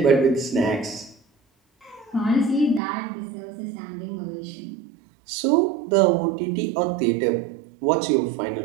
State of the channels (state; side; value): drops out; left; at 2.8 s